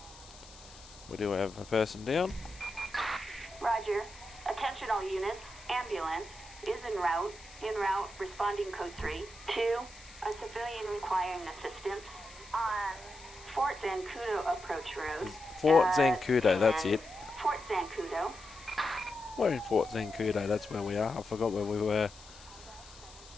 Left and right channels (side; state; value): left; noise; hiss, 20 dB below the sound